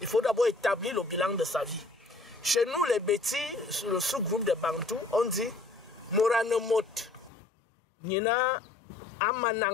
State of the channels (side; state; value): right; drops out; at 7.3 s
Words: faut d'abord établir le bilan de sa vie. Chez nous, les Bétis, le sous-groupe des Bantous, on dit Moranemot, Nina